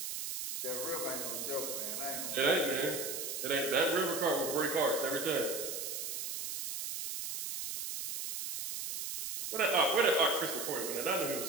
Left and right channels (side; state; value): right; noise; hiss, 5 dB below the sound